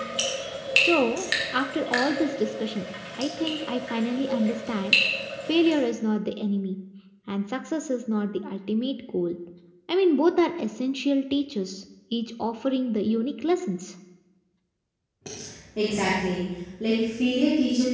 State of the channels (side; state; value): both; identical; correlation 1.00